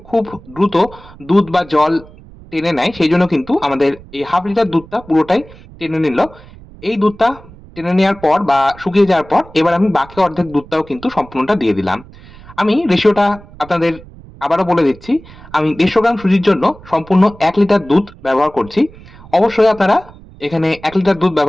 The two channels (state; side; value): noise; right; rumble, 21 dB below the sound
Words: খুব দ্রুত দুধ বা জল টেনে নেয়, সেই জন্য কিন্তু আমাদের এই হাফ লিটার দুধটা পুরোটাই টেনে নিল। এই দুধটা টেনে নেওয়ার পর বা শুকিয়ে যাওয়ার পর এবার আমি বাকি অর্ধেক দুধটাও কিন্তু সম্পূর্ণটা দিয়ে দিলাম। আমি রেশিওটা আপনাদের আবারও বলে দিচ্ছি। আমি 150 গ্রাম সুজির জন্য সম্পূর্ণ 1 লিটার দুধ ব্যবহার করছি। অবশ্যই আপনারা এখানে 1 লিটার দুধ